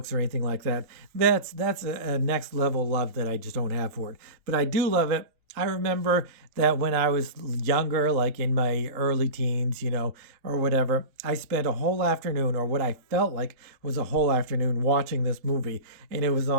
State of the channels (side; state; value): left; late; 3.8 ms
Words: or anything like that. That's a next level love that I just don't have for it. But I do love it. I remember that when I was younger, like in my early teens, or whatever, I spent a whole afternoon, or what I felt like was a whole afternoon, watching this movie. And it was